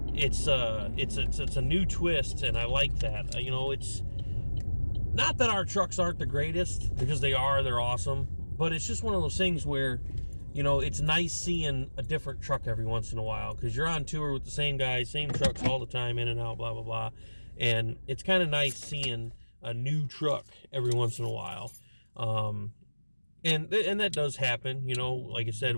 It's a new twist, and I like that. You know, it's not that our trucks aren't the greatest, because they are. They're awesome. But it's just one of those things where you know, it's nice seeing a different truck every once in a while, because you're on tour with the same guys, same trucks all the time, in and out, blah, blah, blah. And it's kind of nice seeing a new truck every once in a while. And that does happen, you know. Like I said,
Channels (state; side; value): inverted; both; correlation -1.00